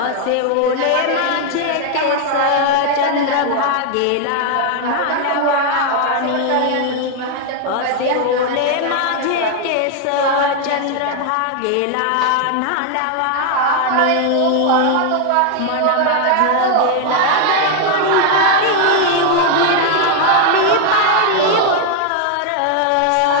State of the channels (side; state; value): both; different; correlation 0.00